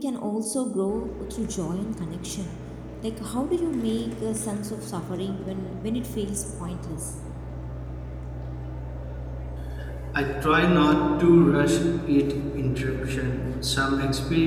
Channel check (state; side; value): identical; both; correlation 1.00